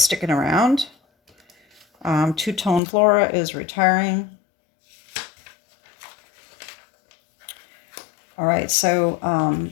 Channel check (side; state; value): right; drops out; at 2.8 s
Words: around. Two-Tone Flora is retiring. All right, so